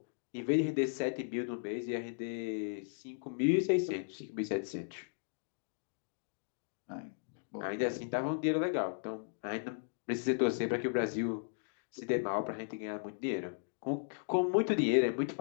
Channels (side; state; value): right; silent; digital silence